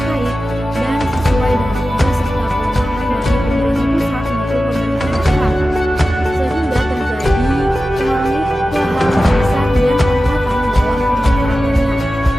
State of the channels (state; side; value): normal; both; correlation 0.94